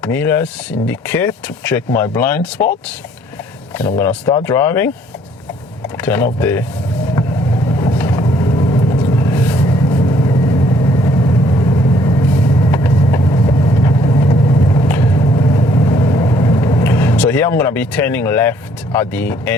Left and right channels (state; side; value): normal; both; correlation 0.63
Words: mirrors indicate to check my blind spots, and I'm gonna start driving. Turn off the here I'm going to be turning left at the